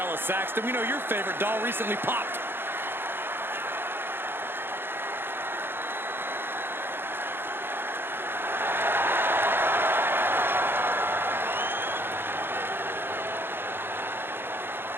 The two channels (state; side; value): late; left; 0.10 ms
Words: Saxton. We know your favorite doll recently popped.